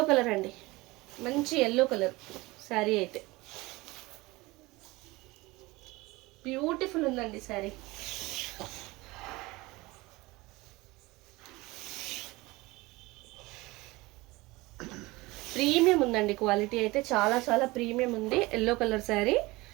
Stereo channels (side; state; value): left; quieter; 21.7 dB